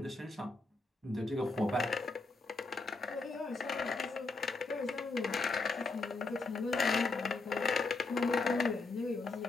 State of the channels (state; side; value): quieter; right; 3.6 dB